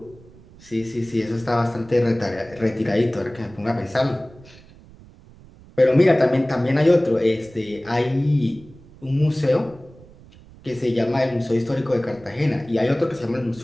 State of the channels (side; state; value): right; noise; rumble, 23 dB below the sound